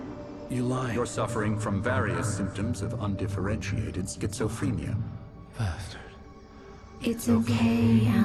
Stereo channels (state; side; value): identical; both; correlation 1.00